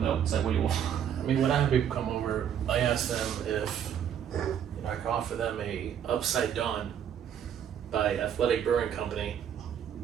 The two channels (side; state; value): left; quieter; 9.1 dB